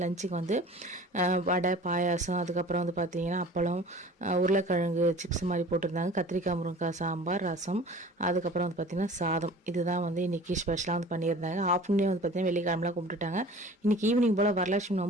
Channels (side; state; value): both; normal; correlation 0.44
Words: லஞ்சுக்கு வந்து வடை, பாயாசம், அதுக்கப்புறம் வந்து பார்த்திங்கன்னா அப்பளம், உருளைக்கிழங்கு சிப்ஸ் மாதிரி போட்டிருந்தாங்க, கத்திரிக்காய் முருங்கைக்காய் சாம்பார், ரசம், அதுக்கப்புறம் வந்து பார்த்திங்கன்னா சாதம். இதுதான் வந்து இன்றைக்கி ஸ்பெஷலாக வந்து பண்ணியிருந்தாங்க. ஆஃப்டர்நூனே வந்து பார்த்திங்கன்னா வெள்ளிக்கிழமெலாம் கும்பிட்டுட்டாங்க. இன்றைக்கி ஈவினிங் போல் வரலட்சுமி